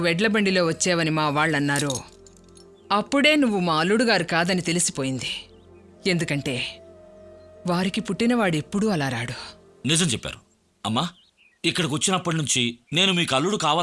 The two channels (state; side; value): identical; both; correlation 1.00